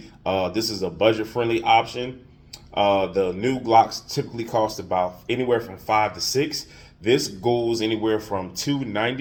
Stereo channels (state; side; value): identical; both; correlation 1.00